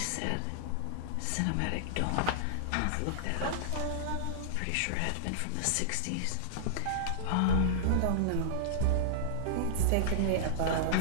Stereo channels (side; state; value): both; different; correlation -0.01